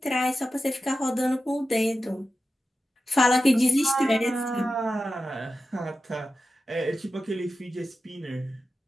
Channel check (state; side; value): normal; both; correlation 0.92